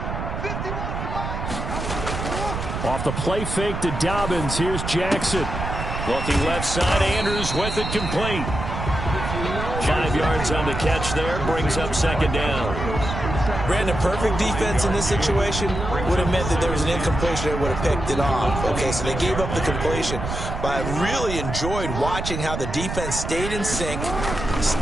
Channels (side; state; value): right; noise; rumble, 5 dB below the sound